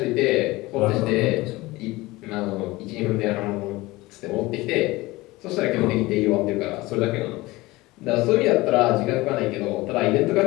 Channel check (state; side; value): quieter; right; 20.4 dB